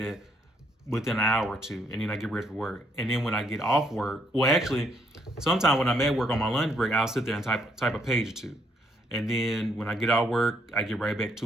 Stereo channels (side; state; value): both; normal; correlation 0.71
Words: within an hour or two, and then I get ready for work. And then when I get off work, well, actually, sometimes when I'm at work on my lunch break, I'll sit there and type a page or two. And then when I get off work, I get right back